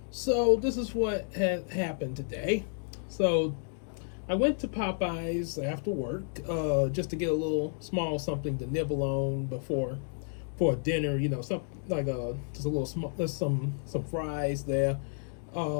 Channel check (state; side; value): silent; right; 57 dB below the other